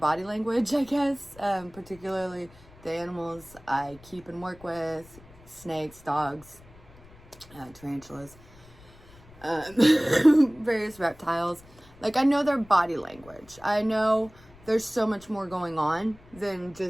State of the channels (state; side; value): noise; left; rumble, 24 dB below the sound